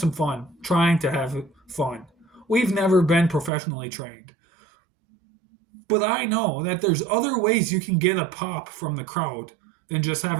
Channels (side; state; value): left; drops out; at 3.5 s